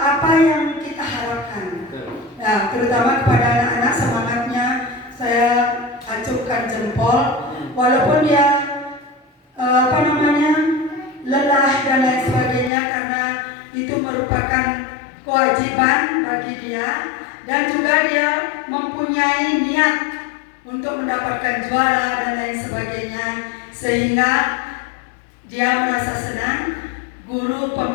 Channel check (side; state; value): right; drops out; at 12.7 s